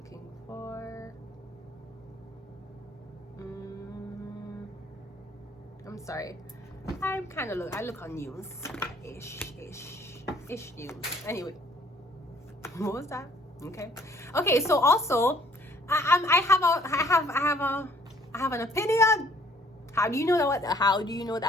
for. I'm sorry. I'm kind of I look on news. Ish news. Anyway, what was that? Okay. So also, I have an opinion. How do you know that? How do you know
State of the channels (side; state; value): both; normal; correlation 0.60